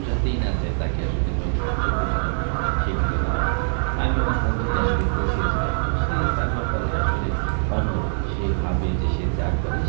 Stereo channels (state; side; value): silent; left; digital silence